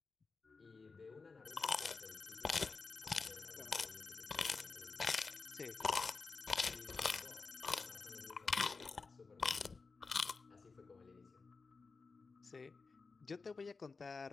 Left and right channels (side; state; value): right; quieter; 4.4 dB